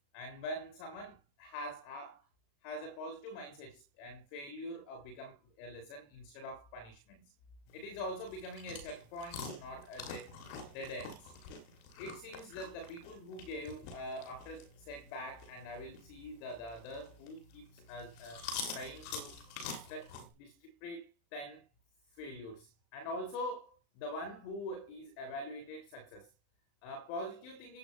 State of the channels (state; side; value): late; right; 35 ms